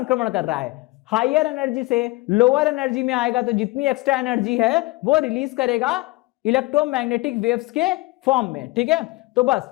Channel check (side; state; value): right; quieter; 21.7 dB